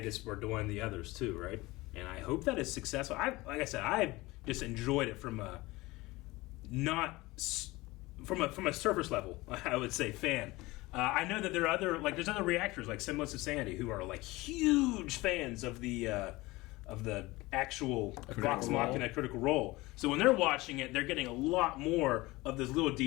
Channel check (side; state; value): right; quieter; 20.8 dB